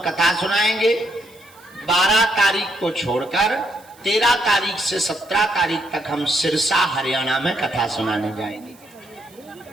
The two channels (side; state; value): right; noise; hiss, 26 dB below the sound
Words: कथा सुनाएंगे। 12 तारीख को छोड़कर 13 तारीख से 17 तारीख तक हम सिरसा हरियाणा में कथा सुनाने जाएंगे।